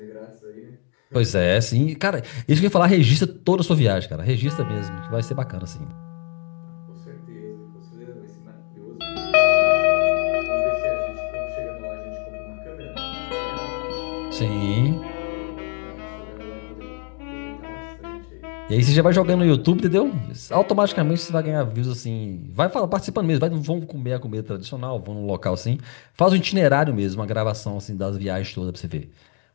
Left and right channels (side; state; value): right; quieter; 37.6 dB